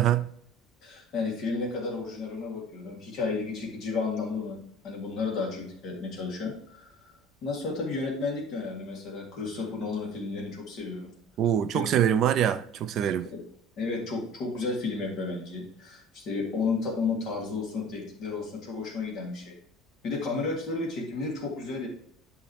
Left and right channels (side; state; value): both; normal; correlation 0.43